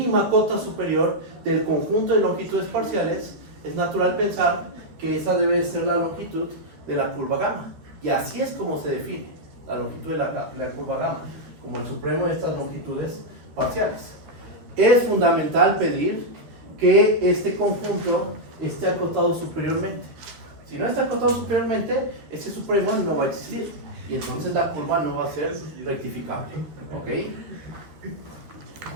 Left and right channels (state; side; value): late; left; 13 ms